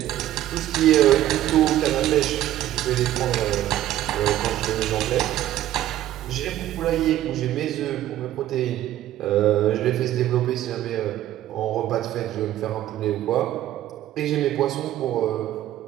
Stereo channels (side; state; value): left; quieter; 13.2 dB